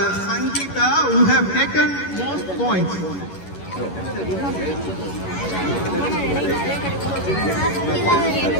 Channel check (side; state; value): right; late; 11 ms